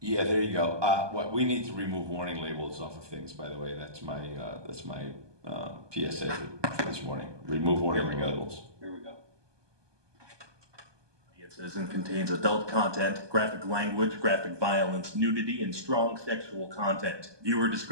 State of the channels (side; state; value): left; late; 1.2 ms